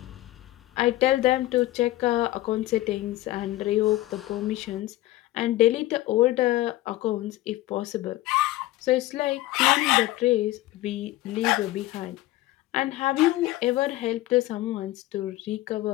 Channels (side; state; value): right; quieter; 16.6 dB